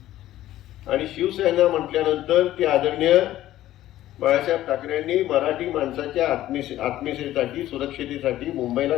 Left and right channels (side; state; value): right; quieter; 14.0 dB